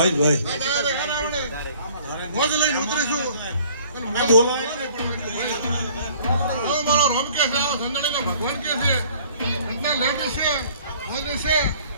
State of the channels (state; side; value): inverted; both; correlation -0.54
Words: ભાઈ મોજ લઈને ઉતરીશું. બોલાય મારો રોમ કે છે, સંજણીનો ભગવાન કે છે, એટલા લેડીઝ છે, મોજ છે.